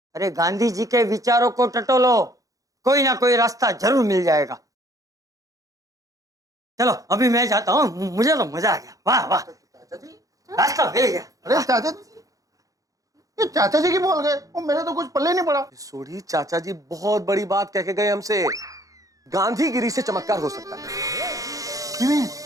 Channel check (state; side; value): late; left; 0.17 ms